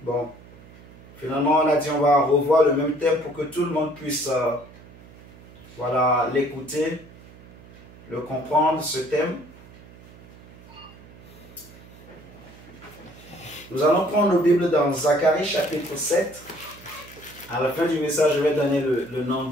Bon, finalement, on a dit on va revoir le même thème pour que tout le monde puisse voilà, l'écouter, le comprendre, ce thème. Nous allons prendre nos Bibles dans Zacharie chapitre 7. À la fin du message, je vais donner le nom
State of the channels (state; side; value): noise; right; hum, 21 dB below the sound